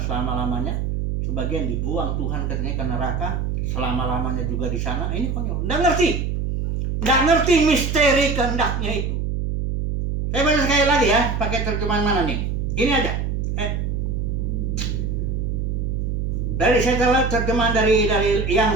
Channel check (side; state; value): right; noise; hum, 1 dB below the sound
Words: Sebagian dibuang Tuhan katanya ke neraka, selama-lamanya juga di sana. Ini konyol. Nggak ngerti misteri kehendaknya itu. Saya baca sekali lagi ya, pakai terjemahan mana nih? Ini ada. Saya terjemahan dari yang